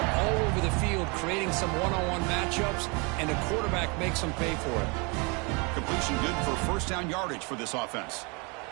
all over the field, creating some one-on-one matchups, and the quarterback makes them pay for it. Completion good for first down yardage for this offense.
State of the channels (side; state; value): left; quieter; 30.6 dB